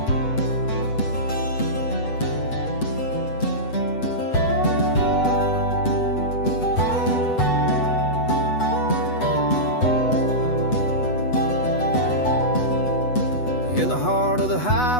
In the heart of the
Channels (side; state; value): right; late; 8.1 ms